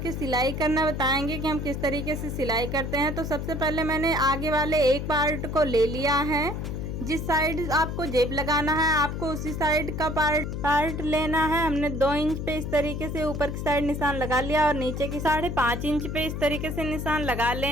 सिलाई करना बताएंगे कि हम किस तरीके से सिलाई करते हैं। तो सबसे पहले मैंने आगे वाले एक पार्ट को ले लिया है। जिस साइड आपको जेब लगाना है आपको उसी साइड का पार्ट लेना है। हमने 2 इंच पे इस तरीके से ऊपर की साइड निशान लगा लिया और नीचे की 5.5 इंच पे इस तरीके से निशान लगा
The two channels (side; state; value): left; noise; hum, 4 dB below the sound